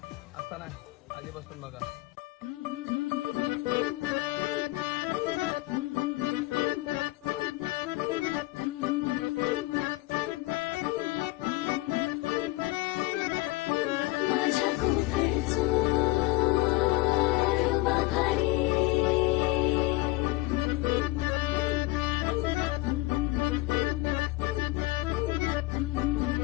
आता नाही आधीपासून बघा. माझ्या कोकणचो बाभारी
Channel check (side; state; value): right; quieter; 21.2 dB